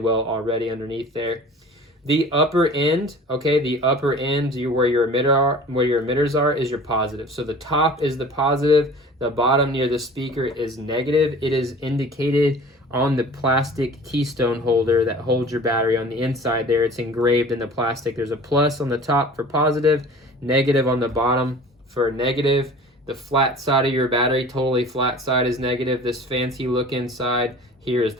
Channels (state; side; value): normal; both; correlation 0.43